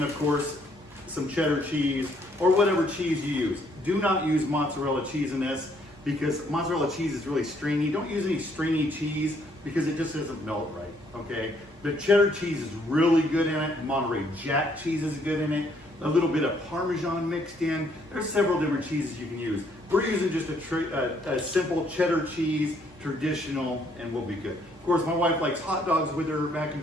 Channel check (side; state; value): both; normal; correlation 0.68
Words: of course some cheddar cheese or whatever cheese you use. Do not use mozzarella cheese in this, because mozzarella cheese is really stringy. Don't use any stringy cheese because it just doesn't melt right, okay? But cheddar cheese is really good in it. Monterey Jack cheese is good in it. A little bit of Parmesan mixed in. There's several different cheeses you can use. We're using just a simple cheddar cheese, traditional, and we'll be good. Of course, my wife likes hot dogs with her mac